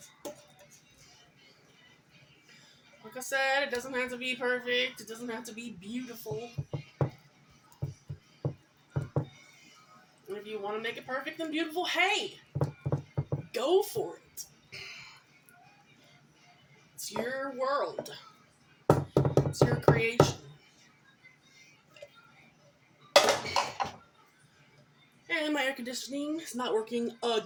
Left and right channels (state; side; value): identical; both; correlation 1.00